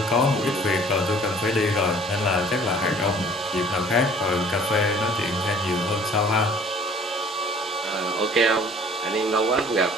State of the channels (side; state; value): both; normal; correlation 0.52